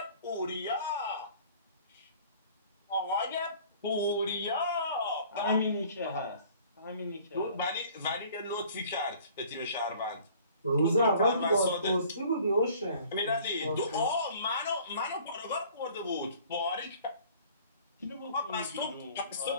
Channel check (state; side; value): inverted; both; correlation -0.51